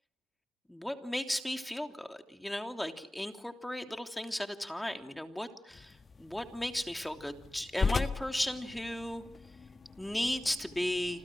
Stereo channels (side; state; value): both; normal; correlation 0.97